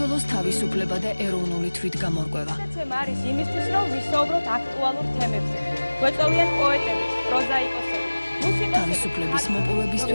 თავისუფლება და ეროვნული თვითგამორკვევა გადაცემა არის იმისთვის რომ ვისაუბროთ აქტუალურ თემებზე გვეწოვიან პოეტები პროზაიკოსები მუსიკოსები თავისუფლების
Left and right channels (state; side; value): inverted; both; correlation -1.00